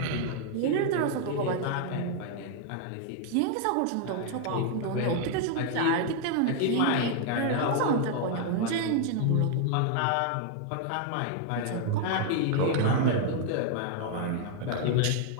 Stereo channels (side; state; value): both; different; correlation 0.00